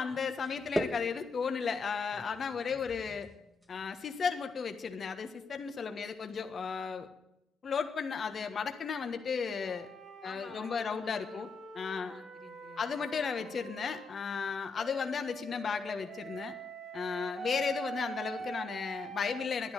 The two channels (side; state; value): right; quieter; 4.6 dB